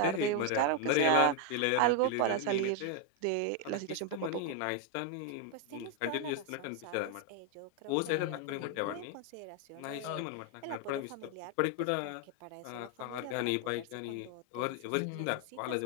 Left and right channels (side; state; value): both; different; correlation 0.01